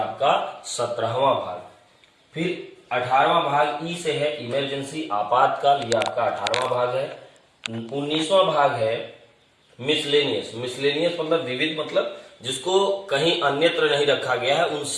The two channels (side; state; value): both; identical; correlation 1.00